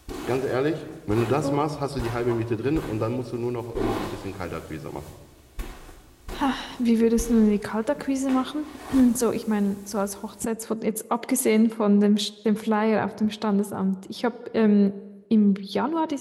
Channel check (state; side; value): identical; both; correlation 1.00